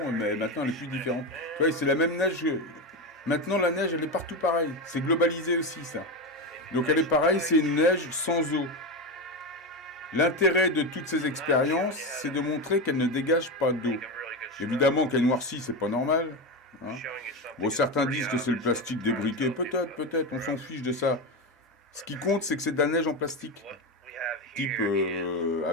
mais maintenant, elle est plus différente. Tu vois, c'est la même neige. Maintenant, la neige, elle est partout pareille. C'est globalisé aussi, ça. Donc, elle est pareille, c'est une neige sans eau. L'intérêt de toutes ces expériences, c'est de montrer qu'elle ne dégage pas d'eau. Évidemment qu'elle noircit, c'est pas normal. Hein. Bon, certains disent que c'est le plastique débriqué. Peut-être, on s'en fiche de ça. Ce qui compte, c'est que c'est de la neige en plastique. Type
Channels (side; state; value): both; normal; correlation 0.16